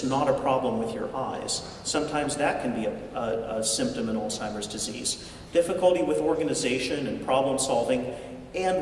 not a problem with your eyes. Sometimes that can be a symptom in Alzheimer's disease. Difficulty with organization and problem solving,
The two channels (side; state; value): both; identical; correlation 1.00